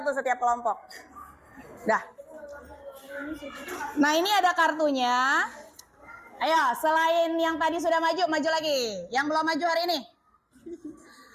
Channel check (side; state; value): both; identical; correlation 1.00